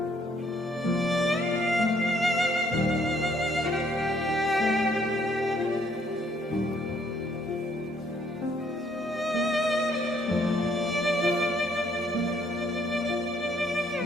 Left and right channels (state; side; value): normal; both; correlation 0.67